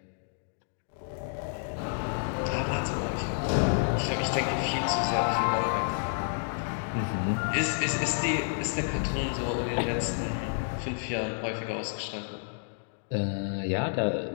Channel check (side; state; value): right; silent; digital silence